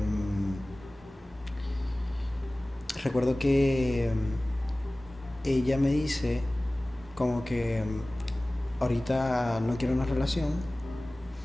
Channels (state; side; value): normal; both; correlation 0.98